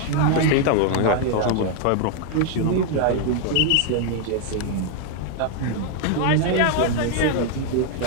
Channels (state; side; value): different; both; correlation 0.00